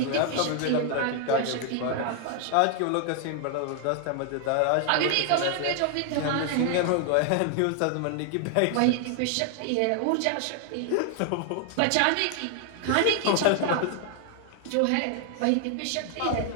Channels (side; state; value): both; different; correlation 0.00